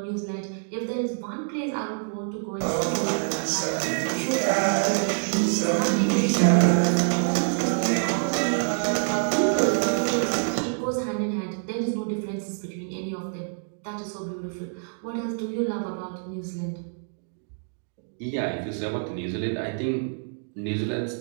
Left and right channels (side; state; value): left; silent; digital silence